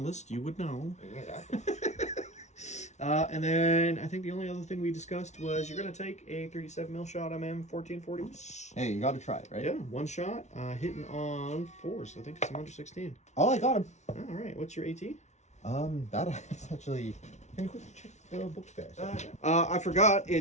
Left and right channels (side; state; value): right; late; 0.33 ms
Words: You would know. Exactly. And then I think the only other thing we discussed was you're going to take a 37mm shot M1440. Hey, you got to try it, right? Yeah, one shot, hitting on 4s. I think it's under 16. Oh, I got him. All right, what's your AT? That's actually... Can you quickly check the book there? I forgot